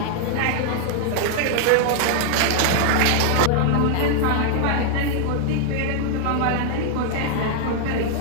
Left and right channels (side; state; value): both; different; correlation 0.00